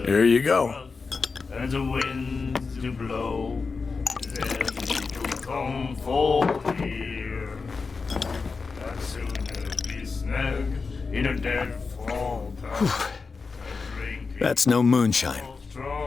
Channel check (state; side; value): quieter; right; 4.6 dB